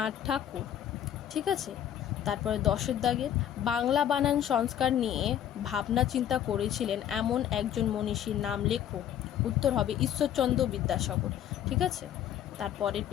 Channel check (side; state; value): right; quieter; 10.4 dB